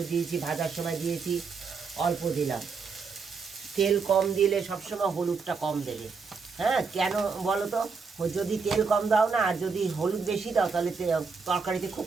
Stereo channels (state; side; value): quieter; left; 5.1 dB